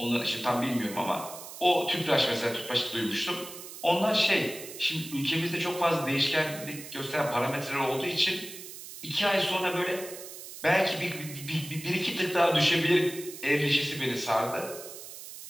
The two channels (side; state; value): right; noise; hiss, 13 dB below the sound